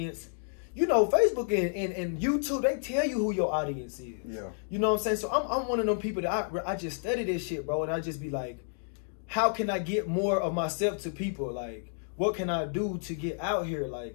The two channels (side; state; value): right; silent; digital silence